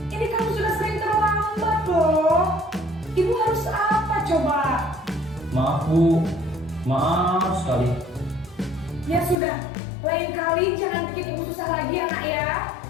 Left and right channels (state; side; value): drops out; right; at 9.3 s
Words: Ini kamu sudah sering terlambat loh. Ibu harus apa coba? Maaf Bu. Maaf sekali. Ya sudah, lain kali jangan bikin ibu susah lagi ya nak ya.